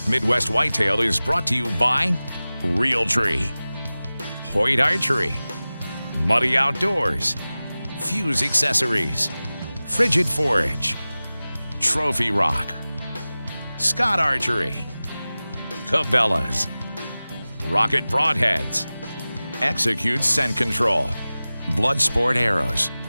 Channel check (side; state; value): both; inverted; correlation -0.97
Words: Midwest Whitetail is brought to you by Realtree, Hoyt Archery, Muddy Outdoors, Fuse Accessories, Frigid Forage, Trophy Rock, Scott Archery, Cabela's, Rocket Broadheads, Execute Scent Control, Bloodsport Arrows,